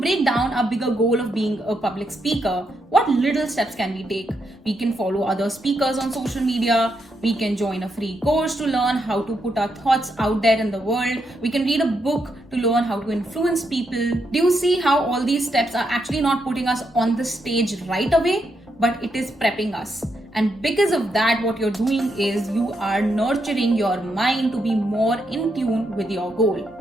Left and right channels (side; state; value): both; normal; correlation 0.80